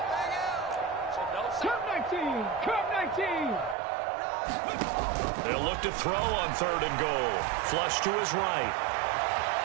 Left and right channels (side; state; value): left; drops out; at 3.8 s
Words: Come 19. They'll look to throw on 3rd and goal. Flush to his right.